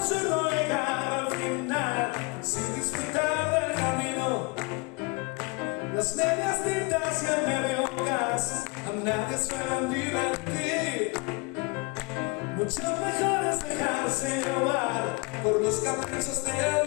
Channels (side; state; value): right; quieter; 29.1 dB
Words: llegar al final sin disfrutar del camino. Las medias tintas y el medio gas a nadie suelen divertir. Mucho mejor es dejarse llevar por los caprichos del